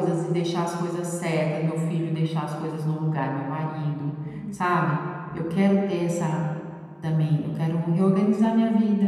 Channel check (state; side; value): identical; both; correlation 1.00